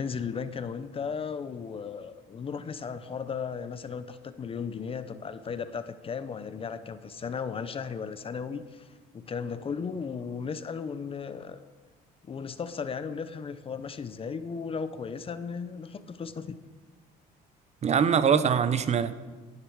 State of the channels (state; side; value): normal; both; correlation 0.36